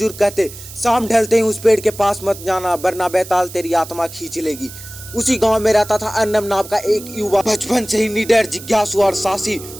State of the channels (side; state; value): right; noise; hiss, 15 dB below the sound